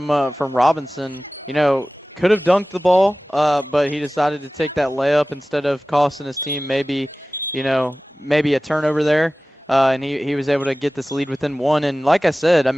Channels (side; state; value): both; normal; correlation 0.97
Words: Robinson. You know, could have dunked the ball, but he decided to take that layup instead of costing his team maybe a turnover there. And he was able to get this lead within one. And like I said, I